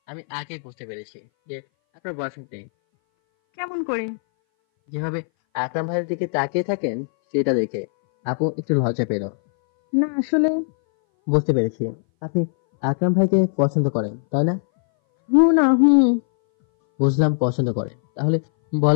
আমি আগে বুঝতে পেরেছি যে আপনার বয়ফ্রেন্ড নেই। কেমন করে? যেভাবে আকরাম ভাইয়ের দিকে তাকিয়ে থাকেন সেটা দেখে আপু একটু লজ্জা পেল। না আসলে বুঝতে পেরেছি, আপনি আকরাম ভাইকে পছন্দ করেন তাই না? বুঝলাম পছন্দ করেন, তাহলে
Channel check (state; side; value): silent; right; 60 dB below the other